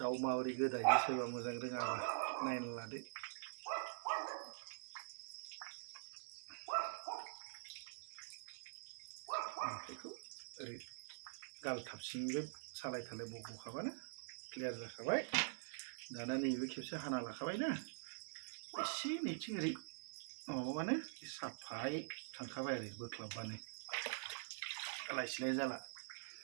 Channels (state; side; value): silent; left; digital silence